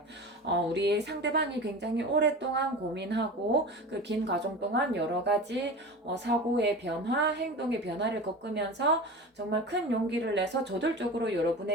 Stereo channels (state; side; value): normal; both; correlation 0.31